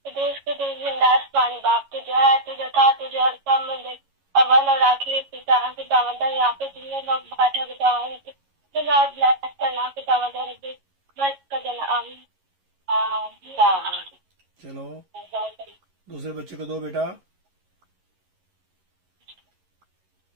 देश के देश जिंदास पानी बाप तुझे है, तुझे था, तुझे हर काम में देख अव्वल और आखिरी पिता के दावता यहाँ पे जितने लोग बैठे बताओ ब्लैक करना के दावता बस का देना। आमीन। चलो दूसरे बच्चे को दो बेटा।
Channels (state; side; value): late; left; 11 ms